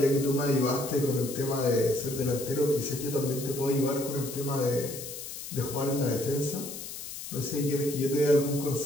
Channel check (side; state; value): left; noise; hiss, 9 dB below the sound